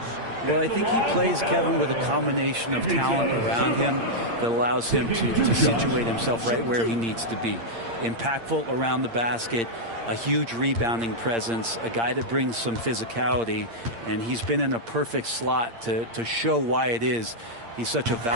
Well, I think he plays, Kevin, with a combination of talent around him that allows him to situate himself right where he needs to be. Impactful around the basket, a huge rebounding presence, a guy that brings some physicality, and he's been in a perfect slot to show why it is he's such a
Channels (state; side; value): late; left; 8.7 ms